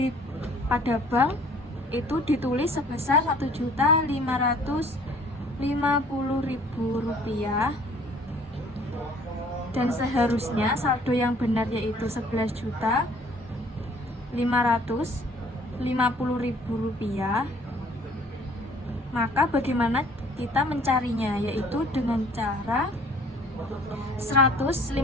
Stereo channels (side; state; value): both; normal; correlation 0.55